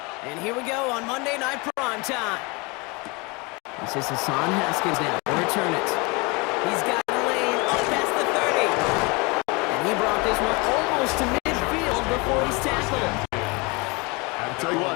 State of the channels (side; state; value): right; quieter; 27.6 dB